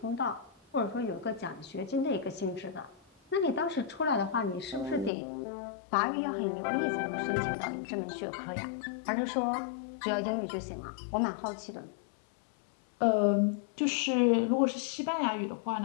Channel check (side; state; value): right; drops out; at 5.1 s